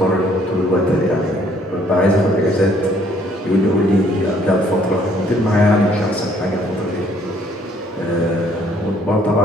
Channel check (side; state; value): both; normal; correlation 0.63